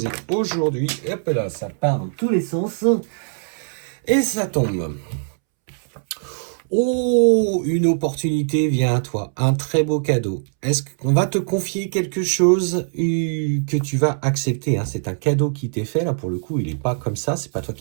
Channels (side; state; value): left; silent; 65 dB below the other